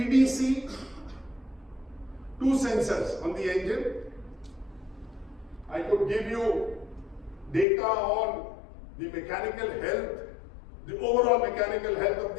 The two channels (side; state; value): right; drops out; at 7.7 s